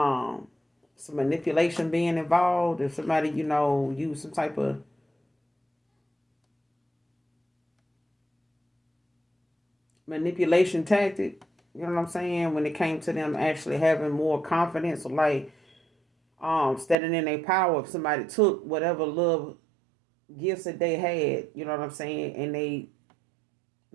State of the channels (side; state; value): left; drops out; at 16.9 s